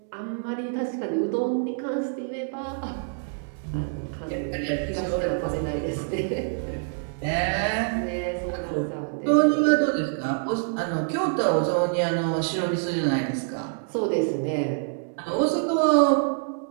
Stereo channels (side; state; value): left; silent; digital silence